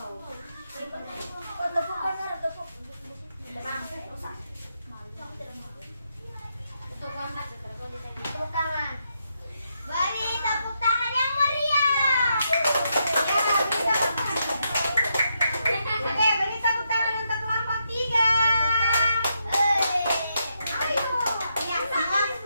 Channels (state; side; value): inverted; both; correlation -0.81